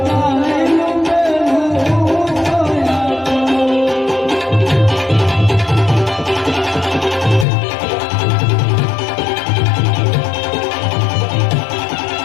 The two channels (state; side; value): drops out; right; at 7.5 s